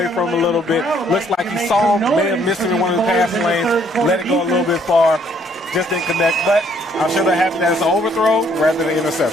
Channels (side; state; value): both; normal; correlation 0.65